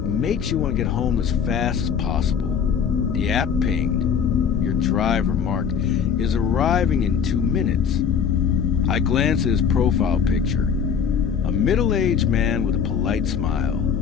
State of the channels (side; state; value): right; quieter; 7.2 dB